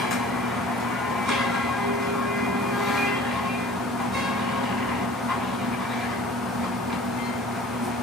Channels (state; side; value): normal; both; correlation 0.47